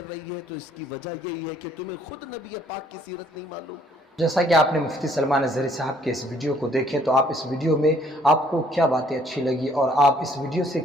रही है तो इसकी वजह यही है कि तुम्हें खुद नबी पाक की सीरत नहीं मालूम। जैसा कि आपने मुफ्ती सलमान अज़हरी साहब के इस वीडियो को देखें, तो आप इस वीडियो में आपको क्या बातें अच्छी लगी और आप इस वीडियो से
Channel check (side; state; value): both; normal; correlation 0.63